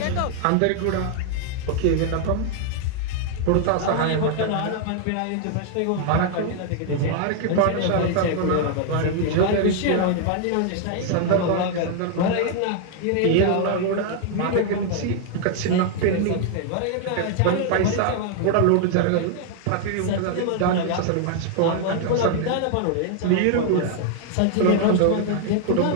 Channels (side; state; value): both; different; correlation 0.00